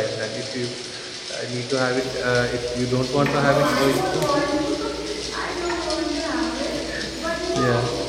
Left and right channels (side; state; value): both; identical; correlation 1.00